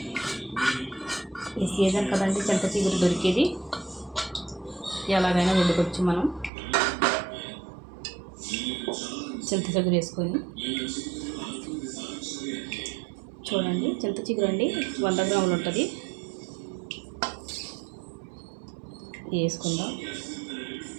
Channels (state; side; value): drops out; left; at 6.5 s